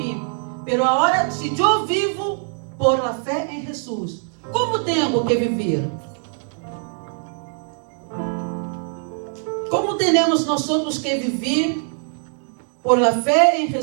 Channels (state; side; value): silent; left; 61 dB below the other